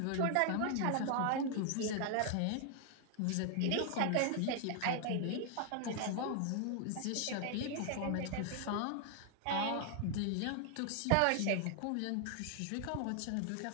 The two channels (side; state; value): both; different; correlation 0.00